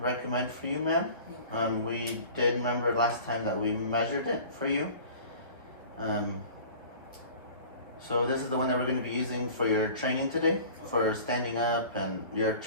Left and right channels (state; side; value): inverted; both; correlation -0.43